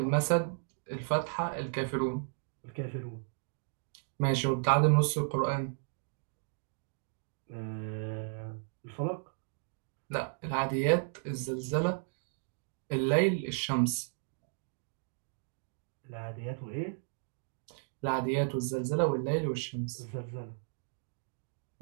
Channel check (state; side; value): silent; left; digital silence